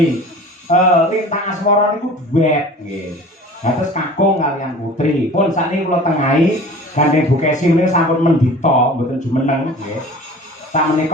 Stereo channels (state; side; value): normal; both; correlation 0.42